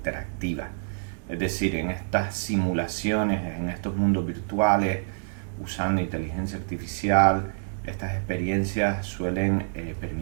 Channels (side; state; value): left; silent; digital silence